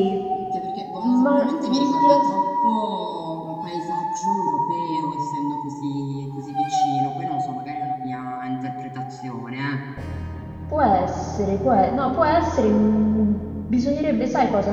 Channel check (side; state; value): both; identical; correlation 1.00